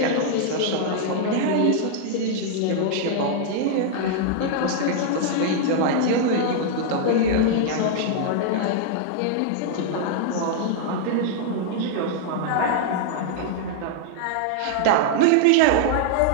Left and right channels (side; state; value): both; different; correlation 0.00